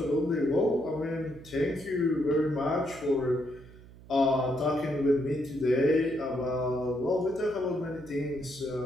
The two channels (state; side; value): noise; right; hum, 20 dB below the sound